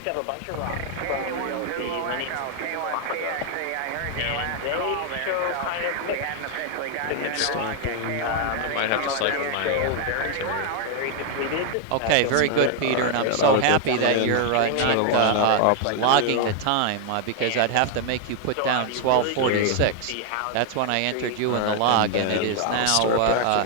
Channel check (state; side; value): different; both; correlation 0.00